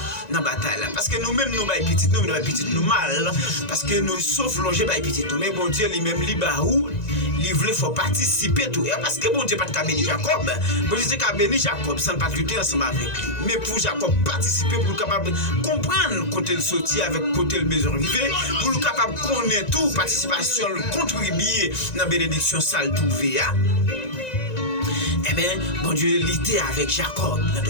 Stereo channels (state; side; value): late; right; 1.9 ms